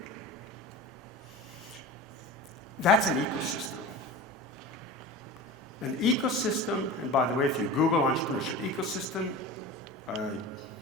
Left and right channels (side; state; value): both; normal; correlation 0.33